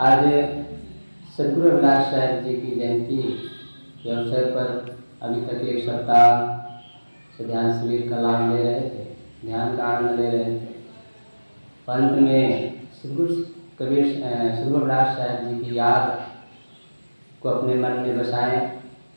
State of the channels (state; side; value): inverted; both; correlation -1.00